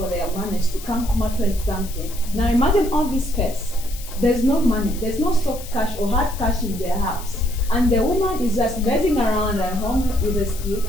their managers to come out with something. Now imagine all this stress. There's no money, there's no soft cash or hard cash in their house, and the woman is just messing around at home with a skill.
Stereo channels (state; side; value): noise; left; hiss, 15 dB below the sound